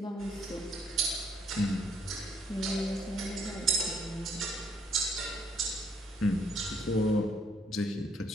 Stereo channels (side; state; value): both; normal; correlation 0.68